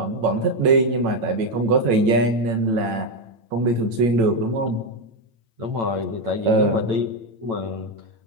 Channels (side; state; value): left; late; 8.9 ms